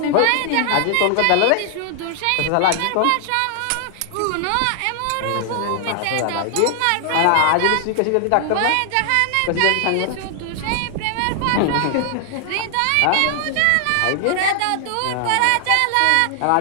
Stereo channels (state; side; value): different; both; correlation 0.00